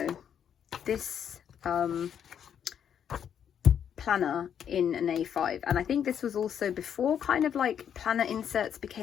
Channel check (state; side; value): quieter; right; 8.6 dB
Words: this planner in an A5. And I think this was also before kind of like planner inserts